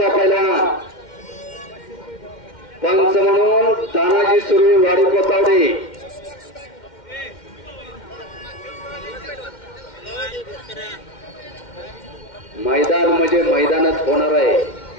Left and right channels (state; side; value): late; right; 2.1 ms